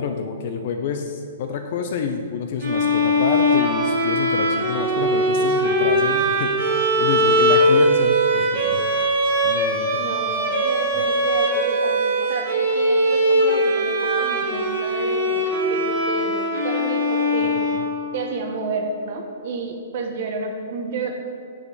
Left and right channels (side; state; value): both; inverted; correlation -0.31